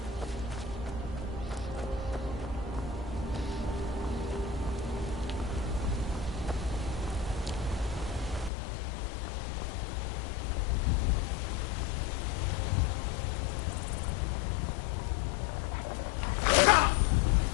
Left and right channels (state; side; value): drops out; right; at 8.5 s